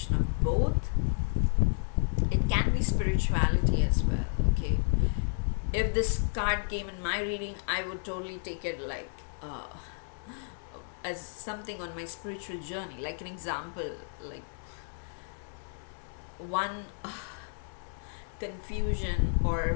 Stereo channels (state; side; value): silent; right; 57 dB below the other